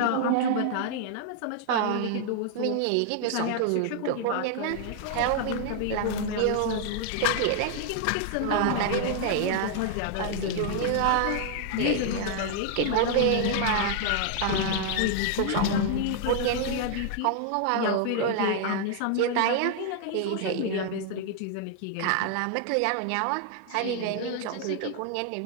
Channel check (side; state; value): both; different; correlation 0.00